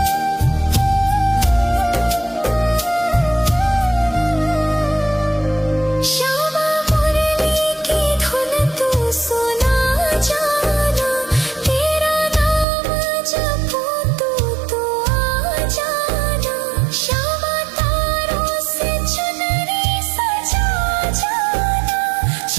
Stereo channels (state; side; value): drops out; left; at 12.7 s